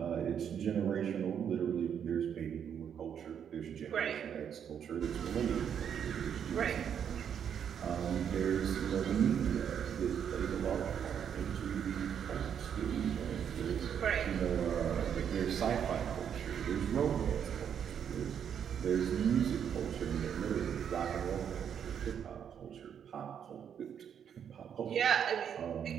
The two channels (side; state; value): left; quieter; 8.4 dB